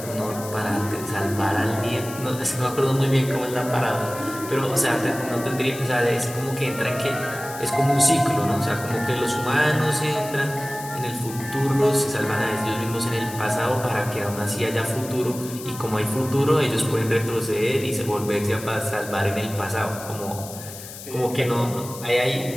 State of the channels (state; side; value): noise; left; hiss, 13 dB below the sound